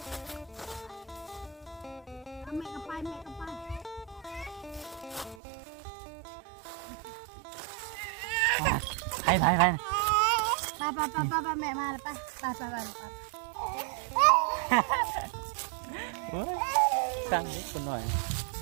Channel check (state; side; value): drops out; left; at 5.4 s